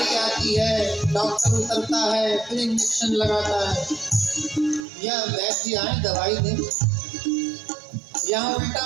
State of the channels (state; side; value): drops out; left; at 4.8 s